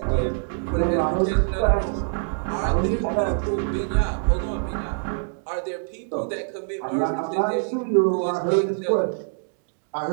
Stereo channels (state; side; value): silent; left; digital silence